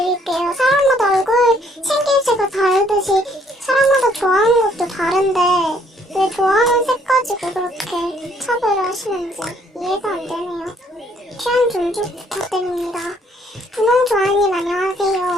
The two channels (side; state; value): both; normal; correlation 0.64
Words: 사람마다 얼굴 생김새가 다르듯이 사람마다 좋아하는 것도 다른데 왜 좋아하는 색 가지고 그렇게 차별하시는지 이해가 안 되네요. 취향 존중 부탁드립니다. 분홍 좋아님